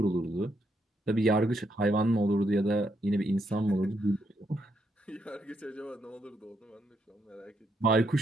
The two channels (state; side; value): normal; both; correlation 0.77